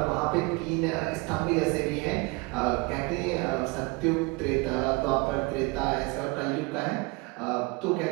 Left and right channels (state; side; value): quieter; left; 26.6 dB